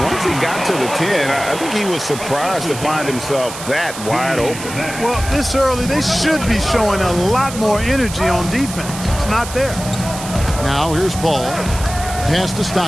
once he got to the 10, I think he was surprised to find himself that wide open. Well, this early, they should be showing a lot more energy on defense. It's not there. Now here's Paul. Pass to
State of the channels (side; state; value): right; noise; hiss, 11 dB below the sound